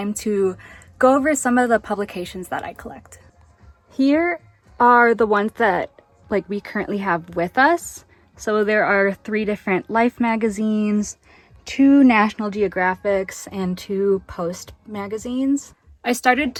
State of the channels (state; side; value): identical; both; correlation 1.00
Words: to go over some of the publications that I collect. Here are the ones that we currently have with us. So there are 3 different Life magazines, 2 National Geographics, and 2 Post magazines. I started